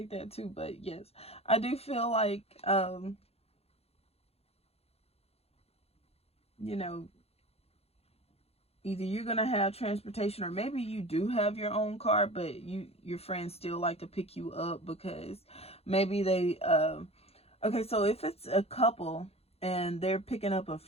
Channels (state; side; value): late; right; 0.29 ms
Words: that too. But yes, I do feel like, you know, either you're going to have transportation, or maybe you do have your own car, but your friends still like to pick you up because maybe they, okay, so if it's a couple and they're picking up a